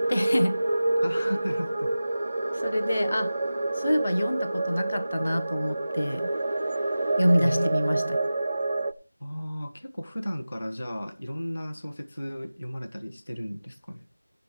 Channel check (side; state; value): both; inverted; correlation -0.96